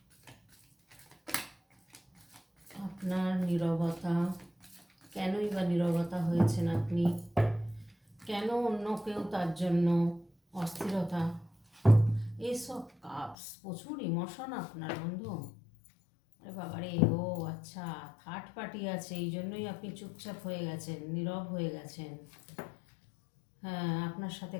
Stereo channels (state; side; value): drops out; right; at 13.4 s